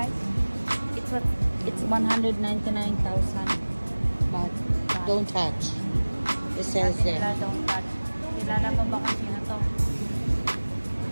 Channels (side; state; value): both; inverted; correlation -1.00